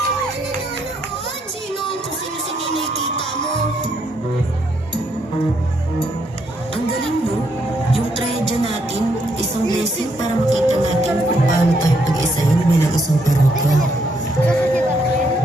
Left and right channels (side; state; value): both; normal; correlation 0.74